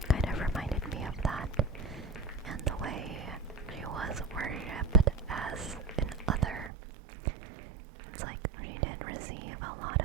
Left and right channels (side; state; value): left; drops out; at 6.7 s